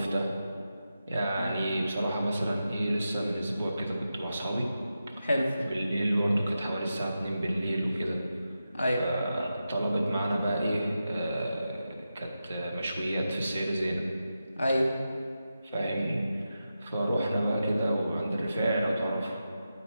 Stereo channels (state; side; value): inverted; both; correlation -0.90